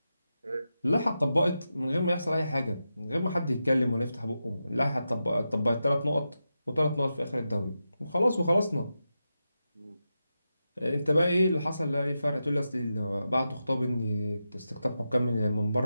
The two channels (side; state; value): both; inverted; correlation -0.90